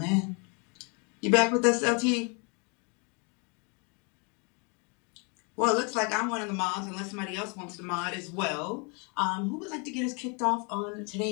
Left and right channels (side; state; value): right; quieter; 33.9 dB